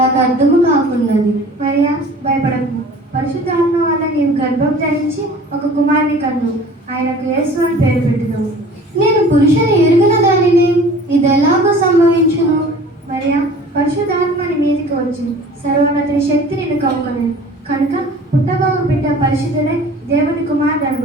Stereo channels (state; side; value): normal; both; correlation 0.46